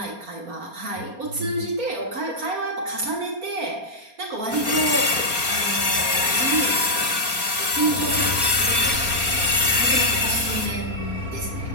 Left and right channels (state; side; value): late; left; 4.3 ms